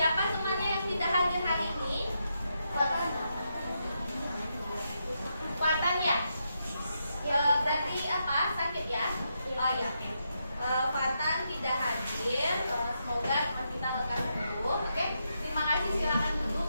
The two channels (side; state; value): both; inverted; correlation -0.83